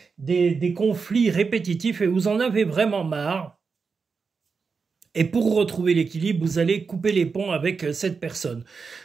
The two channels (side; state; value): left; quieter; 5.1 dB